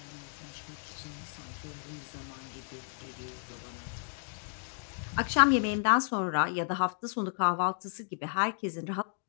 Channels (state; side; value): silent; right; digital silence